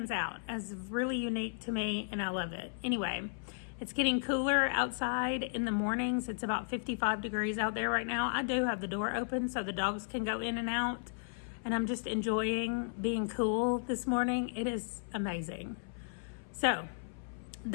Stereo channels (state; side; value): silent; right; 55 dB below the other